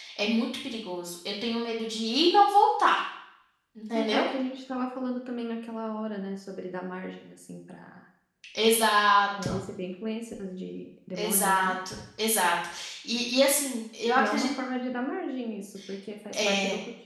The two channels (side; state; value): both; identical; correlation 1.00